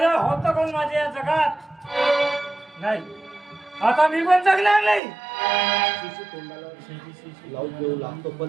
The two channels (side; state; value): left; drops out; at 5.0 s